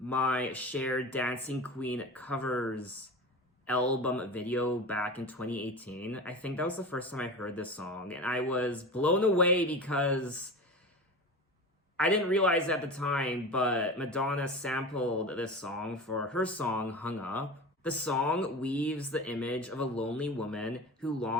shared Dancing Queen covers album video back in 2018. I think that was the first time I heard this song, and I was blown away because I didn't realize at the time, but Madonna sampled this song for her song Hung Up. The song weaves the image of a lonely woman who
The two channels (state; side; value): normal; both; correlation 0.30